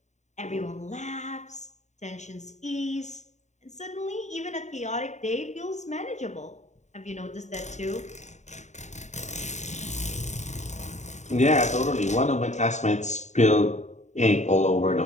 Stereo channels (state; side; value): late; right; 0.34 ms